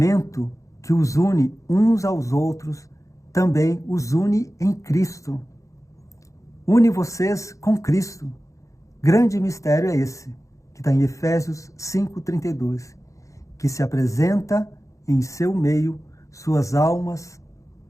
que os une uns aos outros também os une em Cristo. Une vocês com Cristo. Grande mistério é esse, que está em Efésios 5:32, que se apresenta em seu meio suas almas,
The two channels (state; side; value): late; right; 0.15 ms